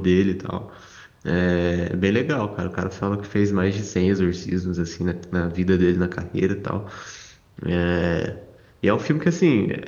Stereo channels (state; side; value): identical; both; correlation 1.00